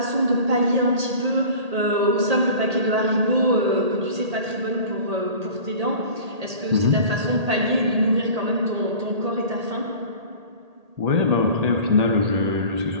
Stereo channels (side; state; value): left; late; 1.8 ms